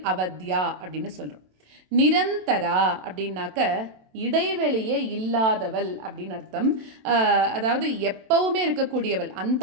அப்படின்னு சொல்றோம். நிரந்தரா அப்படின்னாக்க இடைவெளியே இல்லாதவள் அப்படின்னு அர்த்தம். அதாவது எப்பவுமே இருக்கக்கூடியவள்.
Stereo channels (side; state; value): left; late; 27 ms